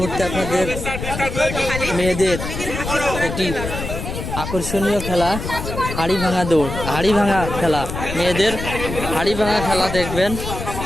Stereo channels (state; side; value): noise; left; rumble, 6 dB below the sound